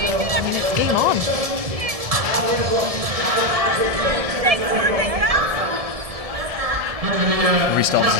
I mean, it's game on. Restart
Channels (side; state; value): left; late; 1.7 ms